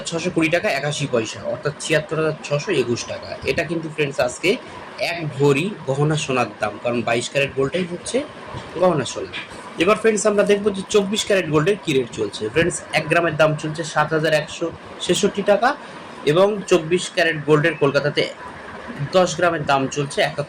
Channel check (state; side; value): identical; both; correlation 1.00